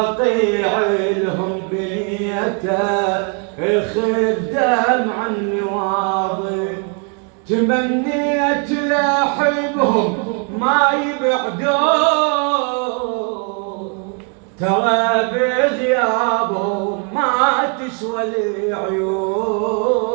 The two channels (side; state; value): left; quieter; 38.3 dB